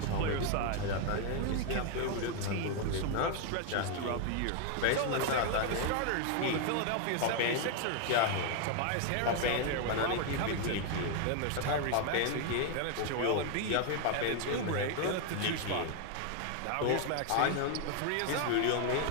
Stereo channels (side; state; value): both; different; correlation 0.00